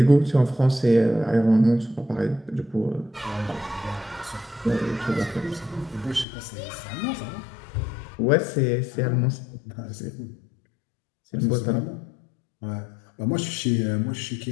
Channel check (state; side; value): drops out; right; at 6.2 s